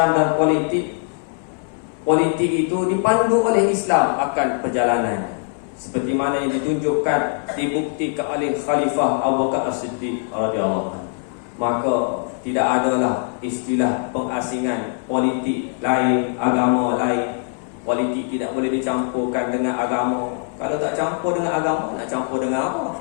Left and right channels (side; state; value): right; silent; 56 dB below the other